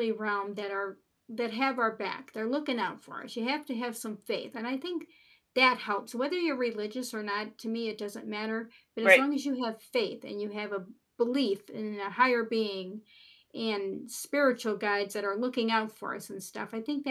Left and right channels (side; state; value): both; identical; correlation 1.00